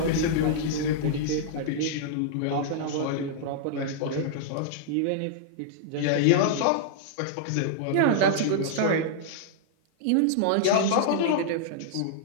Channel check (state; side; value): different; both; correlation -0.01